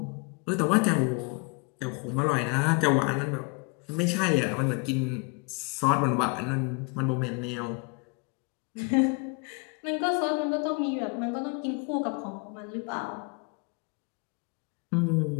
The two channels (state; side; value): quieter; right; 32.0 dB